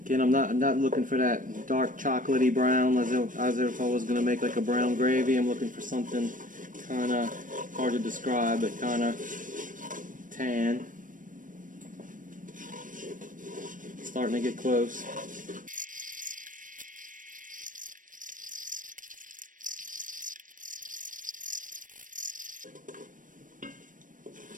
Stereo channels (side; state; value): left; late; 0.38 ms